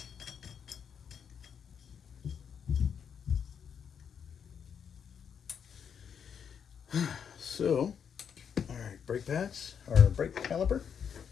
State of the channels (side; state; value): right; quieter; 7.4 dB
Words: So, all right, brake pads, or brake caliper.